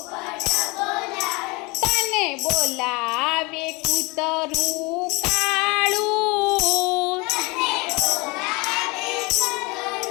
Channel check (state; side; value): quieter; right; 26.4 dB